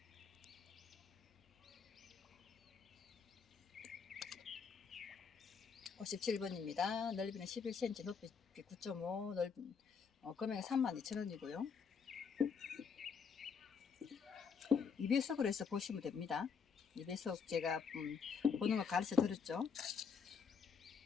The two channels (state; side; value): quieter; right; 6.2 dB